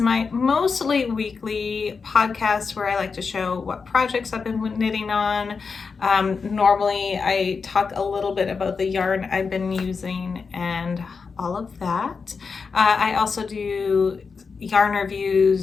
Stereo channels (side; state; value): right; quieter; 5.1 dB